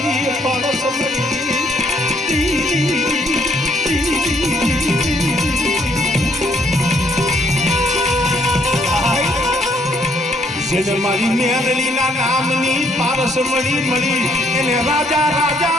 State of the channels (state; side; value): normal; both; correlation 0.68